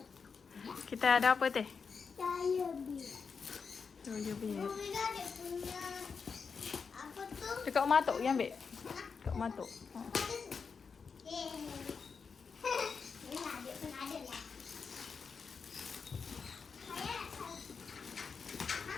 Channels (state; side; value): quieter; right; 5.5 dB